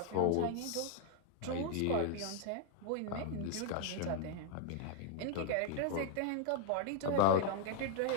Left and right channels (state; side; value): different; both; correlation -0.01